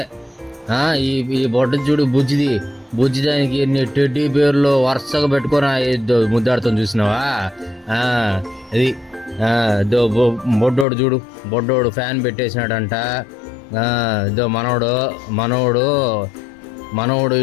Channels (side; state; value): right; drops out; at 10.9 s